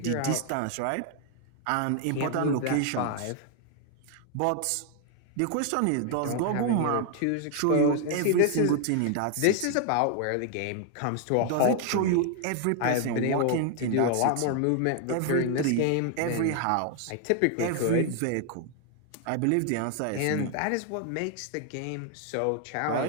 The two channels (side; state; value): both; different; correlation 0.00